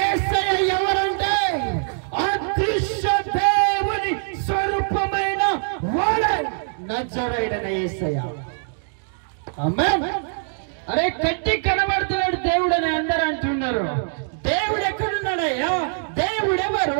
ఎవరంటే అదృశ్య దేవుని స్వరూపమైన వాడే నజరేయుడైన యేసయ్య. ఆమేన్. అరే కట్టి కనబడుతున్నాడు దేవుడు అని అందరూ అంటున్నారు. దేవుడు ఎక్కడున్నాడయ్యా? దేవుడు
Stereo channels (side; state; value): left; silent; digital silence